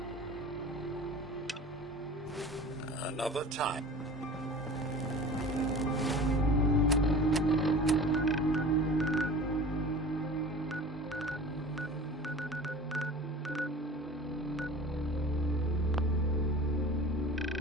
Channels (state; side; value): normal; both; correlation 0.39